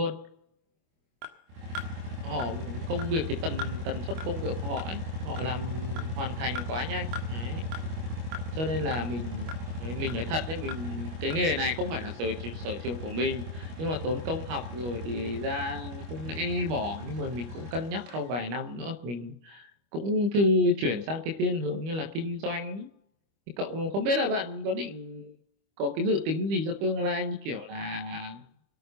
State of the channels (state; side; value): late; left; 25 ms